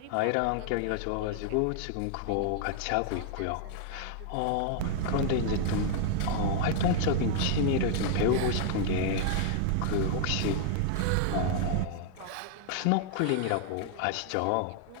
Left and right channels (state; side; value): different; both; correlation -0.01